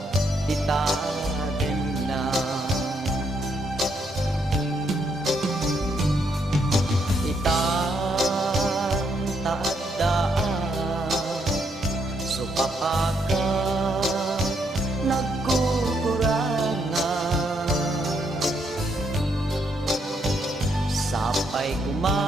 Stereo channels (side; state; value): both; normal; correlation 0.74